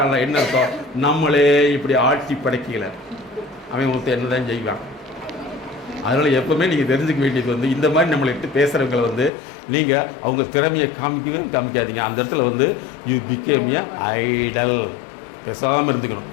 என்ன அர்த்தம், நம்மளே இப்படி ஆட்டி படைக்கல, அவன் ஒருத்தர் என்ன தான் செய்வான். அதனால் எப்போவுமே நீங்கள் தெரிஞ்சுக்க வேண்டியது வந்து இந்த மாதிரி நம்மளை இட்டு பேசுகிறவங்களை வந்து நீங்கள் அவங்க திறமையை காமிக்காதீங்க. அந்த இடத்துல வந்து யூ பிகேம் ஏ ஐடல். பேசாமல் இருந்துக்கணும்.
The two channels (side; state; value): right; drops out; at 9.3 s